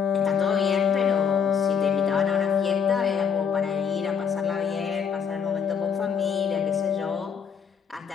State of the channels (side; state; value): right; quieter; 7.0 dB